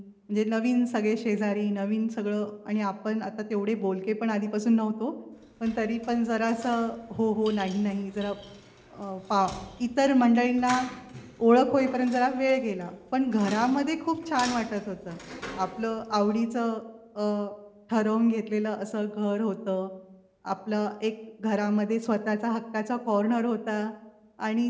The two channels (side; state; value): both; identical; correlation 1.00